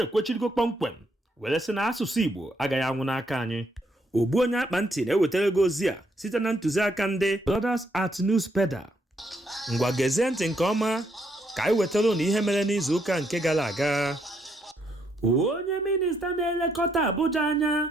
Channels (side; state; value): both; normal; correlation 0.74